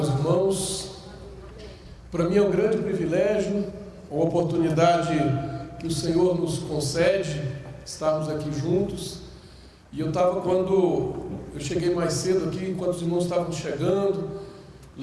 irmãos. Para mim é um grande privilégio, uma oportunidade que o Senhor nos concede, estarmos aqui juntos. E eu estava, quando eu cheguei mais cedo aqui, enquanto os irmãos estavam chegando,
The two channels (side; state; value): both; identical; correlation 1.00